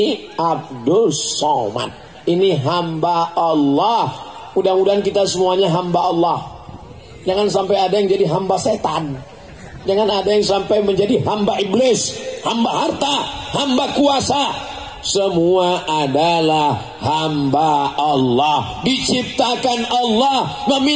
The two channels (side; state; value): both; identical; correlation 1.00